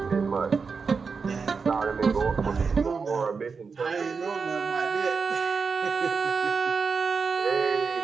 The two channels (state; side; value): quieter; left; 5.2 dB